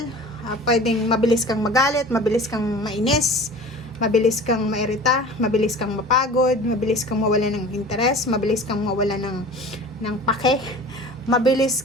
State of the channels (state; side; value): normal; both; correlation 0.40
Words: Pwedeng mabilis kang magalit, mabilis kang mainis, mabilis kang mairita, mabilis kang mapagod, mabilis kang mawala ng interes, mabilis kang mawala ng pake, mabilis